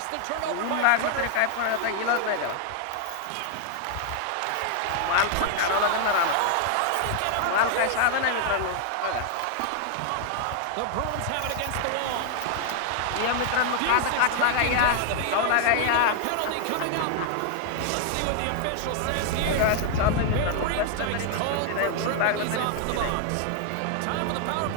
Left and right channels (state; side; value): different; both; correlation 0.00